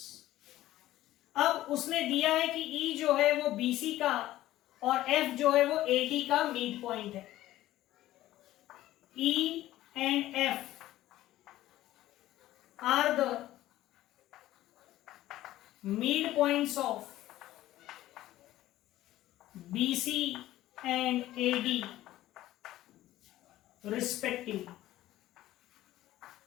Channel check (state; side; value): quieter; right; 14.9 dB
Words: अब उसने दिया है कि ई जो है वो बीसी का और एफ जो है वो एडी का मिड पॉइंट है। E and F are the mid points of BC and AD respectively.